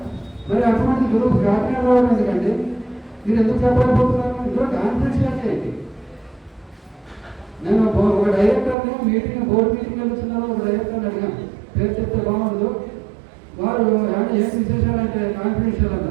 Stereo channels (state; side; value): drops out; left; at 8.8 s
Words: మరి అటువంటి గ్రూప్ కాకినాడ రావడం ఎందుకండి? మీరు ఎందుకు చెప్పలేకపోతున్నారు? ఇందులో కాన్ఫిడెన్షియాలిటీ ఏంటి? నేను ఒక డైరెక్టర్ని బోర్డు మీటింగ్ వెళ్తున్నాను, ఒక డైరెక్టర్ని అడిగాను, పేరు చెప్తే బాగుండదు. వారు ఏం విశేషాలు అంటే కాన్ఫిడెన్షియల్